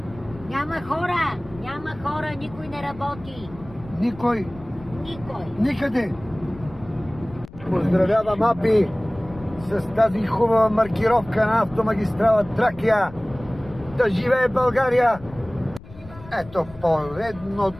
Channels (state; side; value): noise; left; rumble, 19 dB below the sound